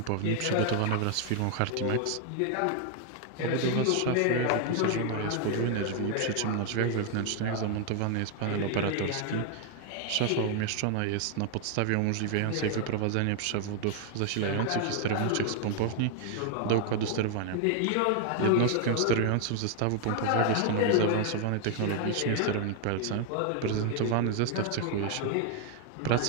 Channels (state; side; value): different; both; correlation 0.00